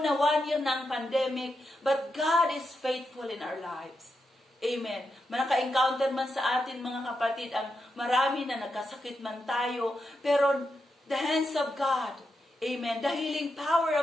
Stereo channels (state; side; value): normal; both; correlation 0.86